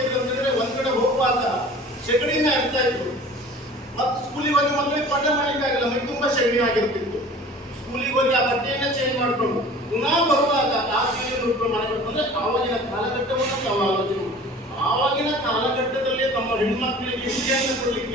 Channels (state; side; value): normal; both; correlation 0.44